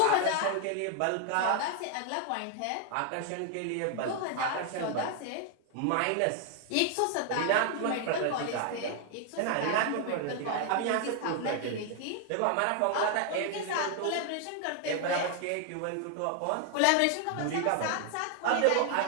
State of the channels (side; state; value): both; different; correlation 0.00